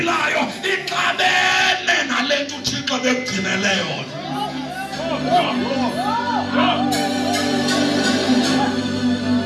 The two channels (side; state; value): both; identical; correlation 1.00